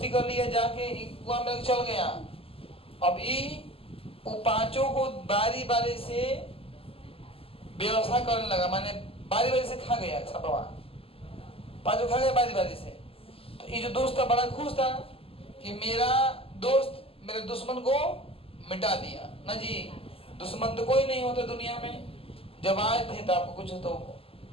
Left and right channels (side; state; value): right; late; 0.27 ms